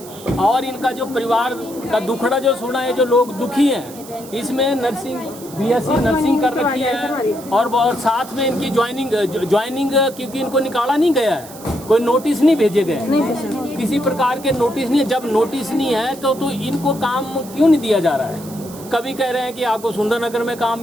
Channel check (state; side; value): noise; right; hiss, 18 dB below the sound